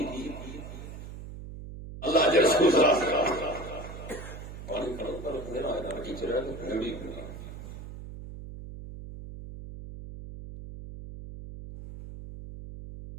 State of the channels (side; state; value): right; noise; hum, 11 dB below the sound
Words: अल्लाह जे रसूल